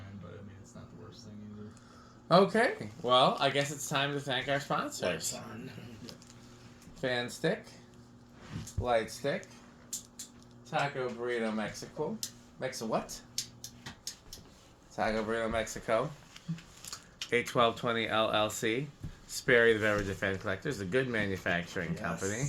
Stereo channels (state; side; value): identical; both; correlation 1.00